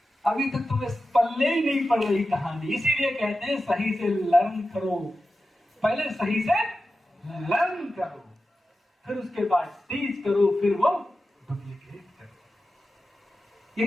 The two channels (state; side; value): normal; both; correlation 0.93